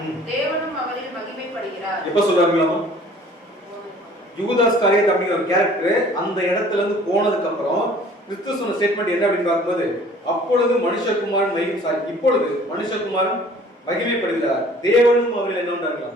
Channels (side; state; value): both; normal; correlation 0.52